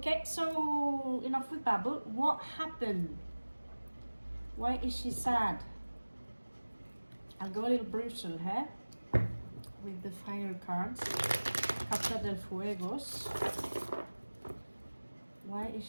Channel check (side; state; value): both; inverted; correlation -1.00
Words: so enough with babble. What happened? Why is she sad? I'll go a little brutal here with the fire cards. Carta del Fuegos. Why is